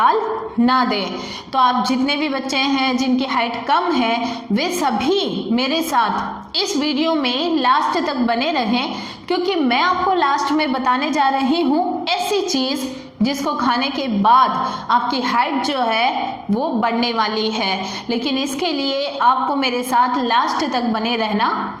ना दे। तो आप जितने भी बच्चे हैं जिनकी हाइट कम है वे सभी मेरे साथ इस वीडियो में लास्ट तक बने रहें, क्योंकि मैं आपको लास्ट में बताने जा रही हूँ ऐसी चीज़ जिसको खाने के बाद आपकी हाइट जो है वो बढ़ने वाली है। लेकिन इसके लिए आपको मेरे साथ लास्ट तक बने रहना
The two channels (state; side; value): identical; both; correlation 1.00